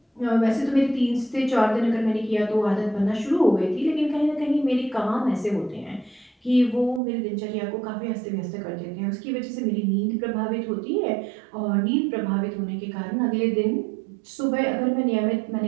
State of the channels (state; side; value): drops out; left; at 7.0 s